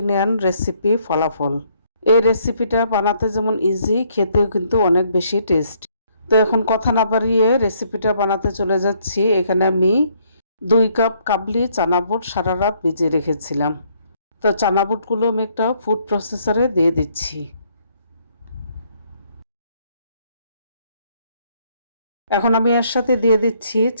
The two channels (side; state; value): both; inverted; correlation -0.68